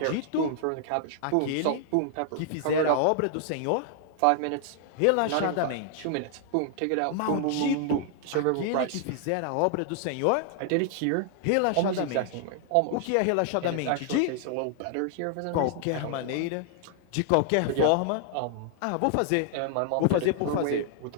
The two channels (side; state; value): both; different; correlation 0.00